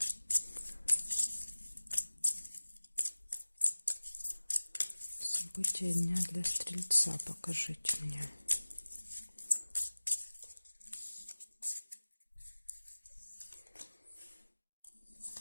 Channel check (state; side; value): inverted; both; correlation -1.00